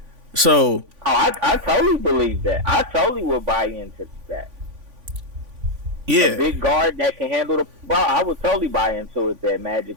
So, I totally believe that. I totally would buy into that. Yeah. A big guard that can handle the ball. I would totally buy into it that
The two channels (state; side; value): late; left; 3.5 ms